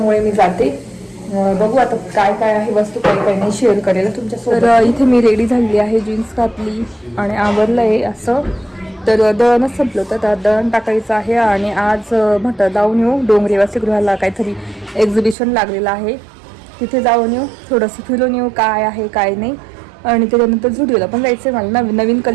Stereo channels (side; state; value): left; drops out; at 15.4 s